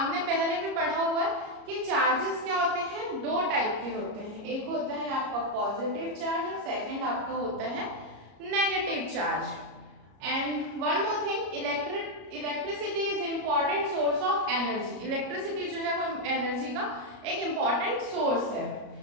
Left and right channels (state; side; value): late; left; 33 ms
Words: पहले भी पढ़ा हुआ है कि चार्जेस क्या होते हैं, दो टाइप के होते हैं। एक होता है आपका पॉजिटिव चार्ज और सेकंड आपका होता है negative charge. And one more thing, electricity is important source of energy. Electricity जो है वो एनर्जी का एक इंपॉर्टेंट सोर्स है।